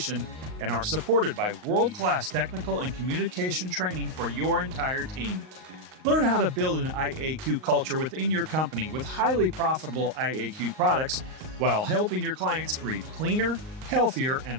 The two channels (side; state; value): left; late; 38 ms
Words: and are supported by world-class technical and communication training for your entire team. Learn how to build an IAQ culture within your company with highly profitable IAQ products while helping your clients breathe cleaner, healthier,